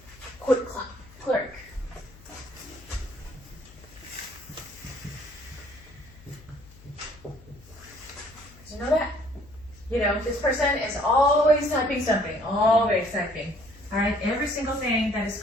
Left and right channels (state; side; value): noise; left; hum, 22 dB below the sound